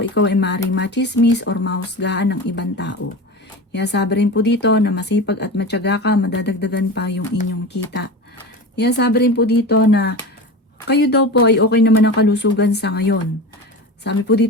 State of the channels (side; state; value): both; normal; correlation 0.28